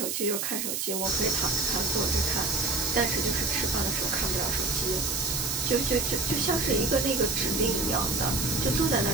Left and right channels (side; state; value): right; noise; hiss, 2 dB below the sound